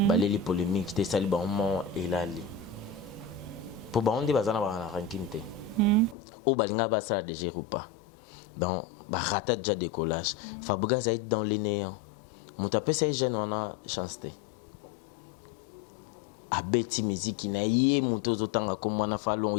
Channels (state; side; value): drops out; right; at 6.2 s